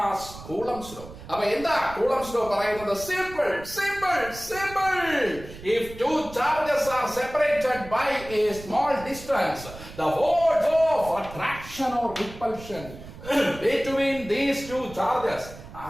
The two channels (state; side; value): noise; right; rumble, 15 dB below the sound